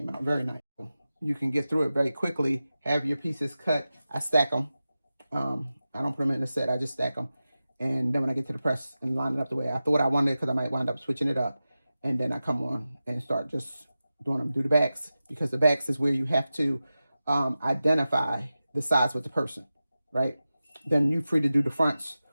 out. Very nice. You can get through it very quickly, have your pieces cut. I stack them. I don't put them in the set, I just stack them. And then when I get to the press and line it up the way I thought I wanted, because I might wind up switching it up. And then I come on and start just doing them. Do the backs, because the backs is where you have to identify the size with the person, right? Then you're free to do the fronts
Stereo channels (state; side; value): inverted; both; correlation -0.94